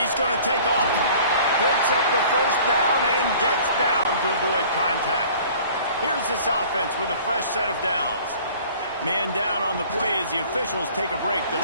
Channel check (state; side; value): inverted; both; correlation -0.49